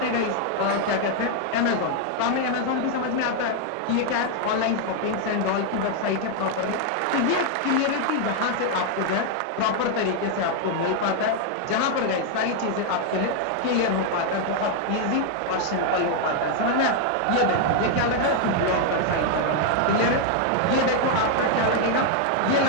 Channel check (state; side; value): different; both; correlation 0.00